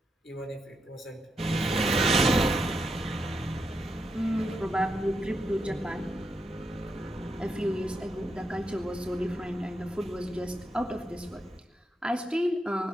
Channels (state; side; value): normal; both; correlation 0.83